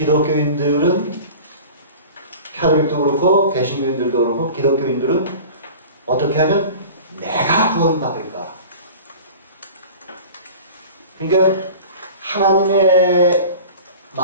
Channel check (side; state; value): both; inverted; correlation -0.39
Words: 캐톨릭도 그렇고 개신교인들도 그렇고 기독교인들은 어떻게 하면 내가 구원받을까 그러니까 하나님의